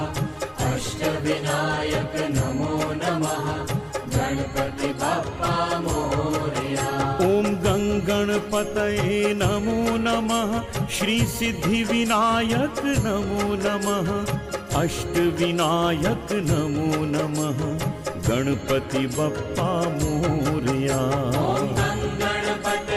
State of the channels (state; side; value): identical; both; correlation 1.00